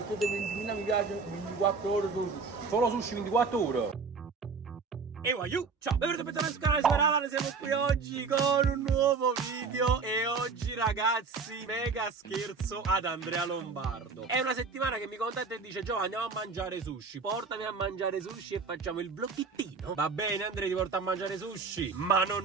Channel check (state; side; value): quieter; left; 4.8 dB